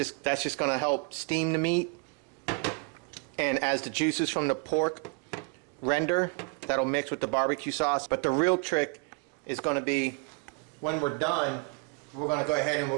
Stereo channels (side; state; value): left; quieter; 32.1 dB